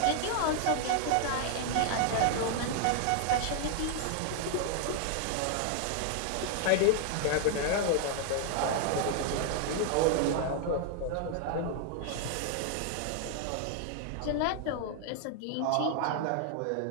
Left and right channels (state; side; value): different; both; correlation 0.00